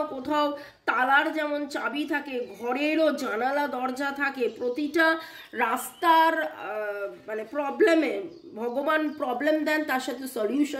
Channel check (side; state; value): both; identical; correlation 1.00